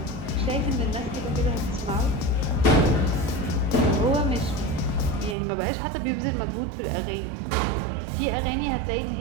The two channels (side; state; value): left; drops out; at 5.4 s